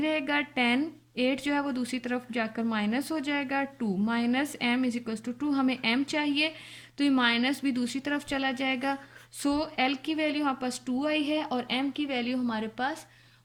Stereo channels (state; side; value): identical; both; correlation 1.00